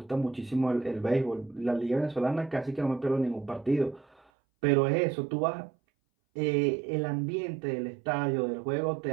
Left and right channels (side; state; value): left; drops out; at 4.2 s